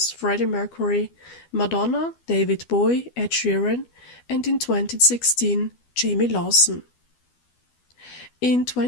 Freddie Mercury, Madonna, David Bowie, Ed Sheeran, and in 2016, Jamie Lawson. In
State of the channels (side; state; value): right; late; 12 ms